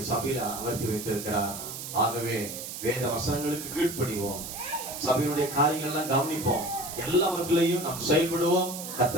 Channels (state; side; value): noise; right; hiss, 8 dB below the sound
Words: சபையில அமர்த்தி வைத்திருக்கிறார். ஆகவே வேத வசனங்களுக்கு கீழ்ப்படிவோம், சபையினுடைய காரியங்கள் எல்லாம் கவனிப்போம், எல்லாவற்றிலையும் நாம் செயல்படுவோம்.